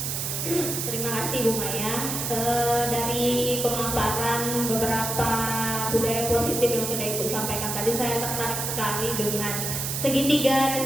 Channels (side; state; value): right; noise; hiss, 2 dB below the sound